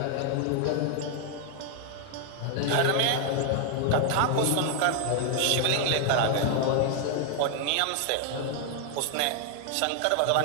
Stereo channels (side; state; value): both; different; correlation 0.00